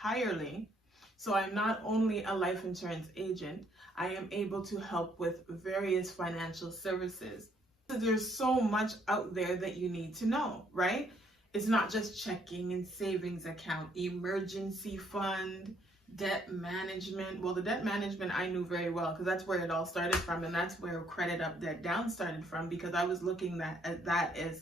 So I'm not only a life insurance agent, I am able to help with various financial services. There's so much out there that you need to know, right? It's not just checking and savings account, emergency fund, debt management. Well, the debt management I knew very well, because that's where it all started from, and that's where credit up, debt down started from, because I was looking at that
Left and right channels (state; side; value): normal; both; correlation 0.68